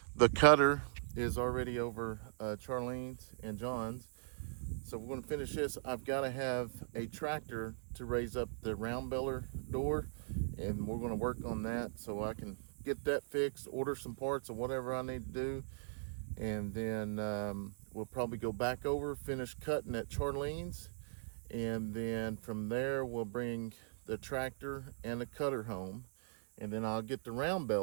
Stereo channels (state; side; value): silent; left; digital silence